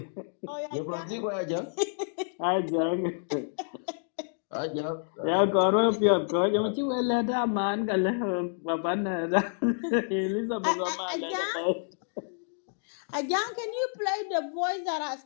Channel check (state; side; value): silent; right; digital silence